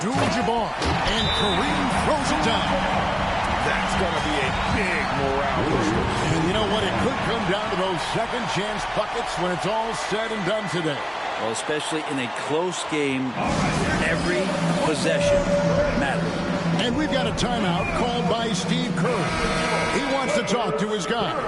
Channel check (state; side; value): identical; both; correlation 1.00